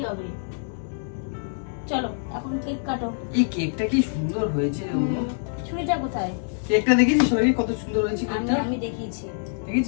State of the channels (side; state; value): right; silent; digital silence